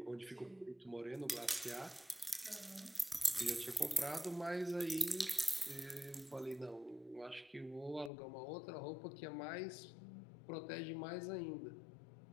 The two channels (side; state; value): right; drops out; at 8.1 s